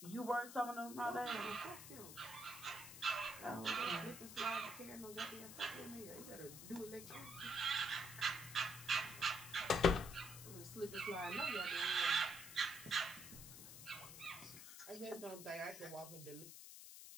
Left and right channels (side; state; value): left; noise; hiss, 12 dB below the sound